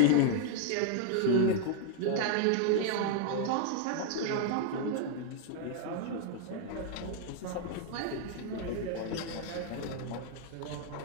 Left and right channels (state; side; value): different; both; correlation 0.00